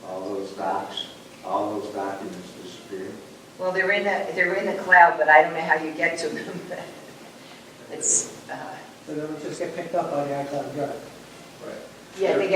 all those documents disappear. Well, they're in the cloud, but I don't know how you get to them. It's So they would just get picked up by the iCloud Drive. yeah.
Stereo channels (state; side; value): identical; both; correlation 1.00